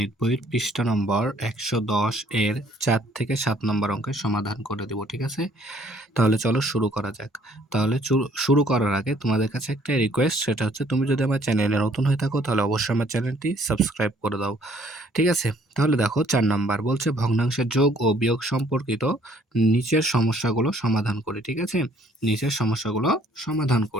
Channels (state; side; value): normal; both; correlation 0.61